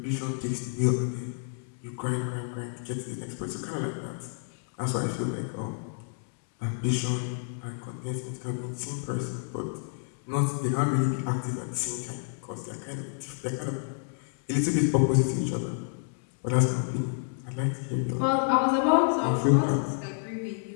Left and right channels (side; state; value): right; silent; digital silence